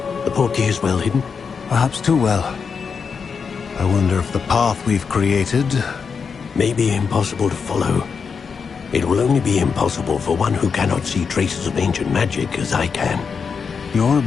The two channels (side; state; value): right; quieter; 5.8 dB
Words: The portkey is well hidden. Perhaps too well. I wonder if the path we've created... May be impossible to follow. It will only be impossible for one who cannot see traces of ancient magic as I can. Your